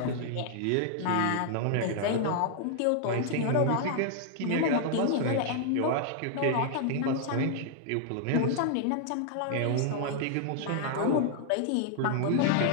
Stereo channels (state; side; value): different; both; correlation -0.01